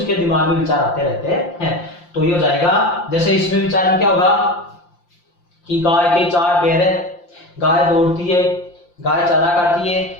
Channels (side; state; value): right; late; 5.7 ms